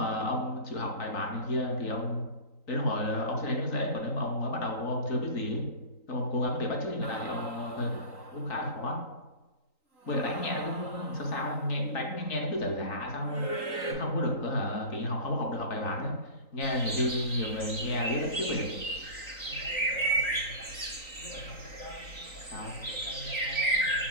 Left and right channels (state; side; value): late; right; 3.9 ms